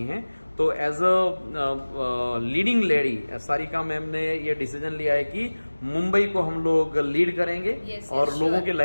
हैं। तो as a leading lady Sarika ma'am ने ये डिसीजन लिया है कि मुंबई को हम लोग लीड करेंगे और लोगों के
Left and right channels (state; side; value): inverted; both; correlation -1.00